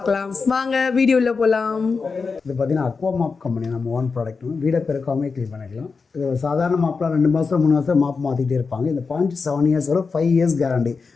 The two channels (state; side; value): quieter; right; 4.8 dB